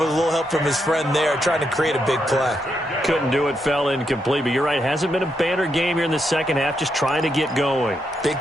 a little help from his friend there, trying to create a big play. Couldn't do it, fell incomplete, but you're right, hasn't been a banner game here in the second half, just trying to get going. Big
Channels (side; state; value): both; normal; correlation 0.81